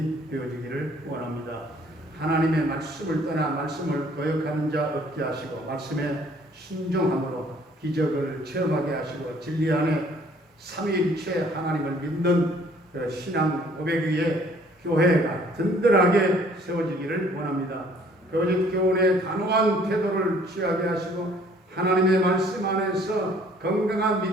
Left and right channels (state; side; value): normal; both; correlation 0.58